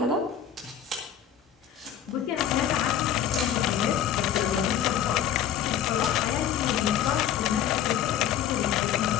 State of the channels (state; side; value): quieter; right; 9.4 dB